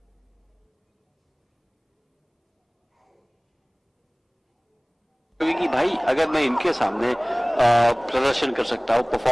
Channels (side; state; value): both; identical; correlation 1.00